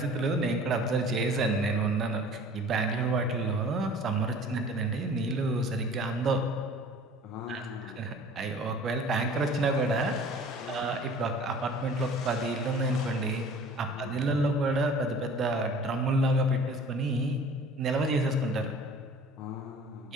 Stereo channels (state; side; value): normal; both; correlation 0.46